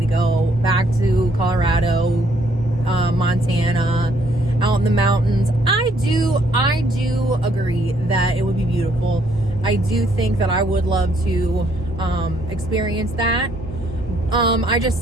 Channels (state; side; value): normal; both; correlation 0.68